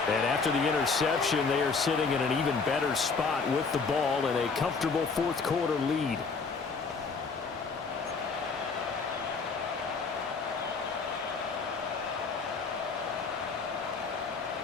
And after the interception, they are sitting in an even better spot with the ball and a comfortable fourth quarter lead.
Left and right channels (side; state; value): right; quieter; 4.7 dB